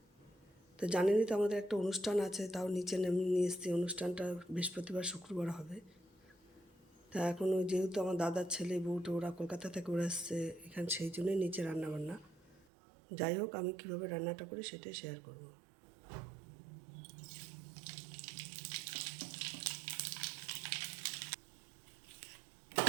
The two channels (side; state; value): left; drops out; at 12.7 s